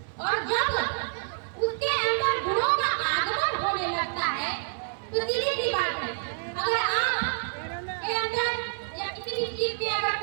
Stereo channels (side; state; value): left; silent; 59 dB below the other